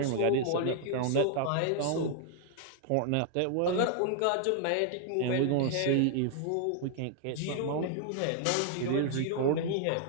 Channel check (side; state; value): both; different; correlation 0.00